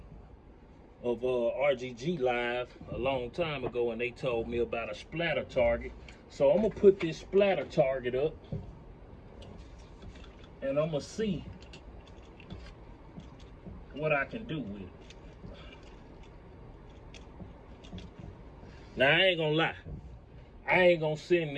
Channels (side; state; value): both; identical; correlation 1.00